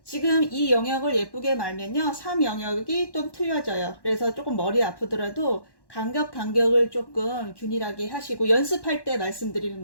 지금 이 영역을 예쁘게 말면요, 3 영역이 좀 틀려져요. 그래서 조금 머리 아프더라도 간격을 조금 균일하게 하시고 연습할 때 말씀드리는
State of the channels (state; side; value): late; right; 1.1 ms